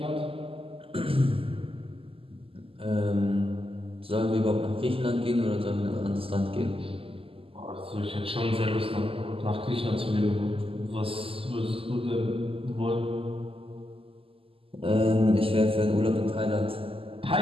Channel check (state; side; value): late; left; 0.26 ms